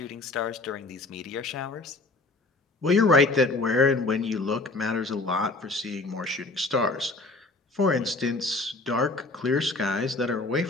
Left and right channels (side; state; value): right; quieter; 3.2 dB